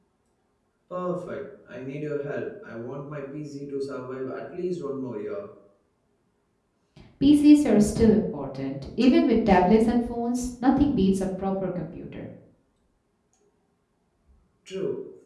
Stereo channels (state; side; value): identical; both; correlation 1.00